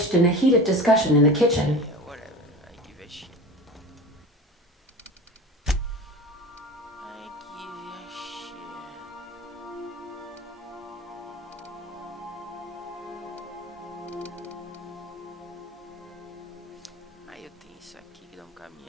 in a heated discussion in the kitchen. Yeah, whatever. I give a shit. I give a shit. Aí eu tenho isso aqui que dá um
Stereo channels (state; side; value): normal; both; correlation 0.33